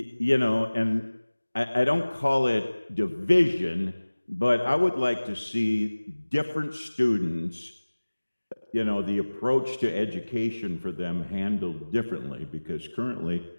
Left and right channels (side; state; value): both; inverted; correlation -1.00